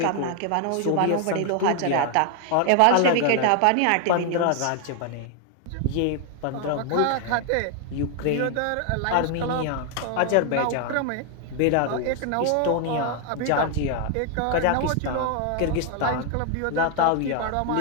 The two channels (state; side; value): different; both; correlation 0.00